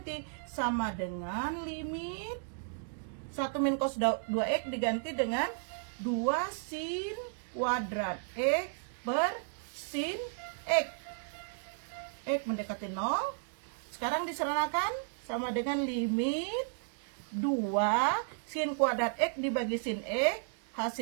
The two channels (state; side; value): silent; left; digital silence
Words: sama dengan limit 1 min cos 2X diganti dengan 2 sin kuadrat X per sin X. X mendekati 0. Sekarang diserahkan sama dengan limit 2 sin kuadrat X dibagi sin X.